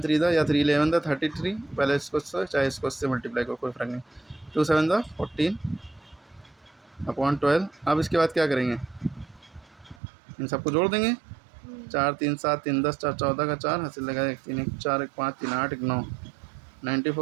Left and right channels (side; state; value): left; drops out; at 10.0 s